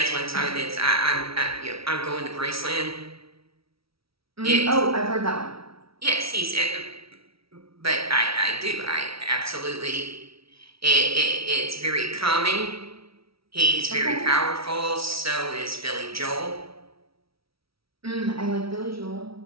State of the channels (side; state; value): left; late; 0.75 ms